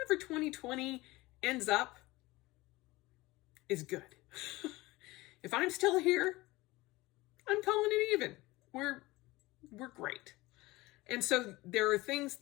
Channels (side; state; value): right; quieter; 20.3 dB